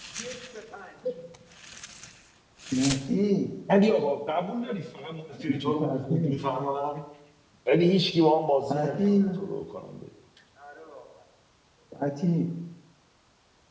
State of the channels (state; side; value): identical; both; correlation 1.00